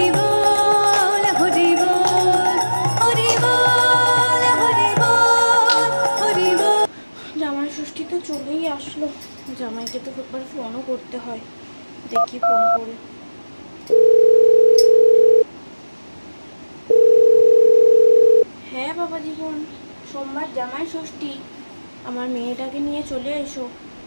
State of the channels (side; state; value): both; inverted; correlation -1.00